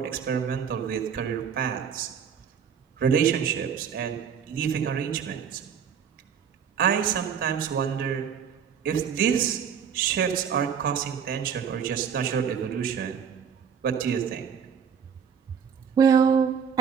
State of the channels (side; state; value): left; quieter; 7.4 dB